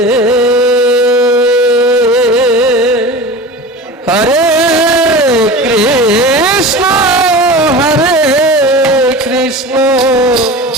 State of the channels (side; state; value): both; normal; correlation 0.33